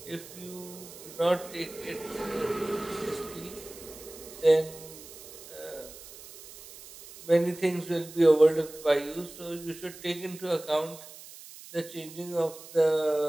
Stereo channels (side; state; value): right; noise; hiss, 17 dB below the sound